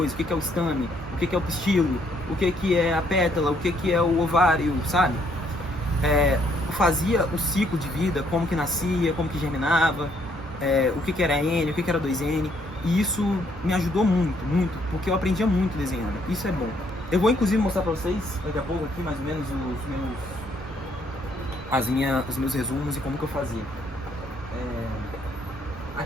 o que é o estame, o que é o pistilo, o que é a pétala, o que é o ovário, sabe? Eu fazia o ciclo de vida, como que nascia, como que germinava, o que era N, o que era 2N, e isso me ajudou muito, muito, porque eu aprendia muito desenhando, isso é bom. Eu vou inclusive mostrar pra vocês, daqui a pouco aqui, mais ou menos, os meus resumos e como que eu fazia.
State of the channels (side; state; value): both; normal; correlation 0.68